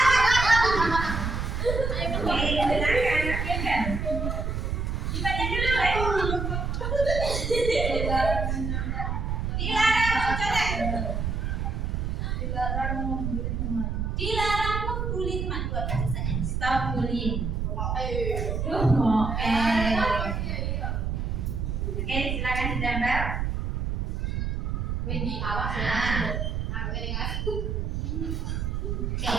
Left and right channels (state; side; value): noise; right; rumble, 1 dB below the sound